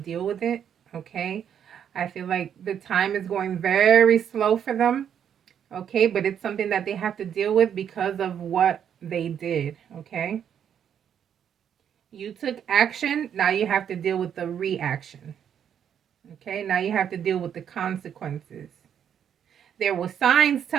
with it, okay? I feel like the time is going very slow for them, okay? But it's something that they have to deal with because of what they did, okay? You took action, now you have to deal with the reaction, okay? Now you have to deal with the consequences. There were signs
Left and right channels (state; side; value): quieter; left; 8.8 dB